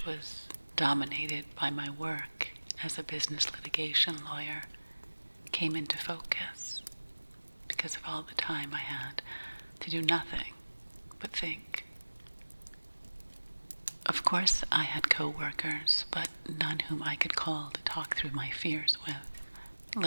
was dominated by my work as a business litigation lawyer, came into focus because of all the time I had to do nothing but think. Of course, I had co-workers, but none whom I could call to talk through my fears with,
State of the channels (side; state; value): both; inverted; correlation -1.00